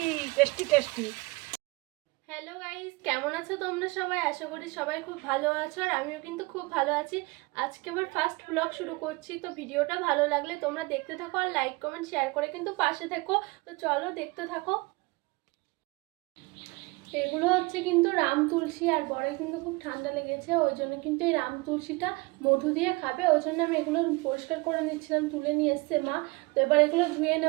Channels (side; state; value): left; quieter; 25.3 dB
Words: tasty tasty. Hello guys, কেমন আছো তোমরা সবাই? আশা করি সবাই খুব ভালো আছো, আর আমিও কিন্তু খুব ভালো আছি। আজকে আমার ফার্স্ট ব্লগ শুরু করছি, তো ভিডিওটা ভালো লাগলে তোমরা দেখতে থাকো আর লাইক কমেন্ট শেয়ার করে কিন্তু পাশে থেকো। তো চলো দেখতে থাকো। এগুলো হচ্ছে কিন্তু রাম তুলসী, আর বড় কিন্তু খুব ঠান্ডা লেগেছে, ওই জন্য কিন্তু এই রাম তুলসীটা মধু দিয়ে খাবে, ওই জন্য আমি এগুলো পরিষ্কার করে নিচ্ছিলাম, তুলে নিয়ে এসছে মা। তো এবার এগুলো ধুয়ে